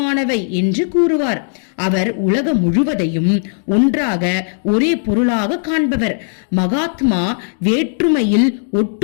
என்று கூறுவார். அவர் உலகம் முழுவதையும் ஒன்றாக ஒரே பொருளாக காண்பவர். மகாத்மா வேற்றுமையில்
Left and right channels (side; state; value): right; silent; 68 dB below the other